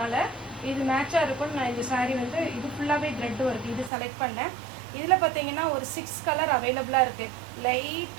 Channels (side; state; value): left; drops out; at 3.9 s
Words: இது மேட்சாக இருக்கும்னு நான் இந்த சாரீ வந்து இது ஃபுல்லாகவே த்ரெட் ஒர்க் இது செலக்ட் பண்ணேன். இதில் பார்த்தீங்கன்னா ஒரு 6 கலர் அவைலபிளாக இருக்குது. லைட்